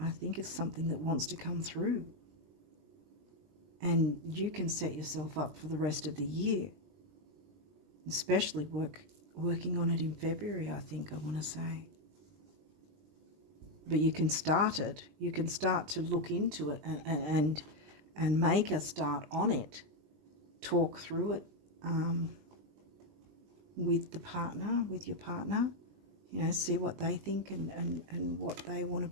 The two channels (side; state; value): left; late; 20 ms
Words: think it's something that wants to come through. And you can set yourself up for the rest of the year, especially working on it in February, I think I want to say. But you can start it. You can start to look into it and make a start on it. Talk through it with your partner. See what they think and what they want to